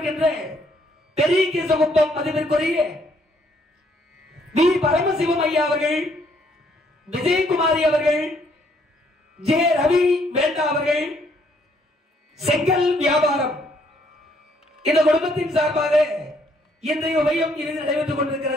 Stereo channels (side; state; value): both; normal; correlation 0.68